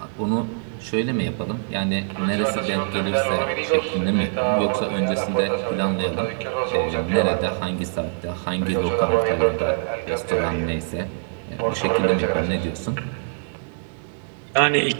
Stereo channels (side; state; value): left; silent; 63 dB below the other